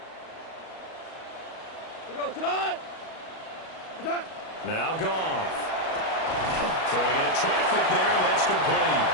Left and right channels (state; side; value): late; right; 37 ms